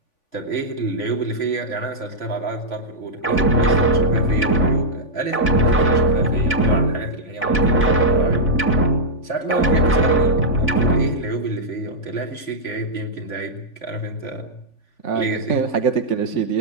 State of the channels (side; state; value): right; late; 3.5 ms